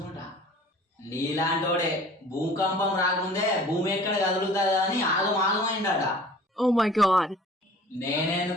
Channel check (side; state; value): both; normal; correlation 0.47